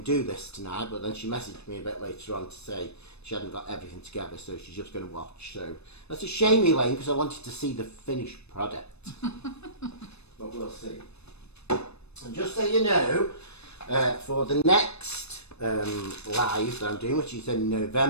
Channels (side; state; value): right; late; 0.80 ms